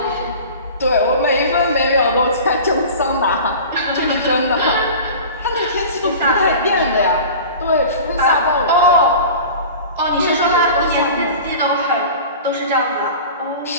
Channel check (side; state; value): both; inverted; correlation -0.38